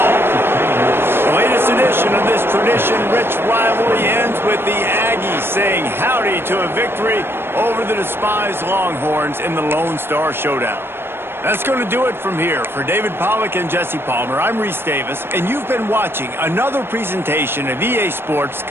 The latest edition of this tradition-rich rivalry ends with the Aggies saying howdy to a victory over the despised Longhorns in the Lone Star Showdown. That's going to do it from here. For David Pollack and Jesse Palmer, I'm Reese Davis, and you've been watching another presentation of EA Sports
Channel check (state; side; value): late; left; 0.11 ms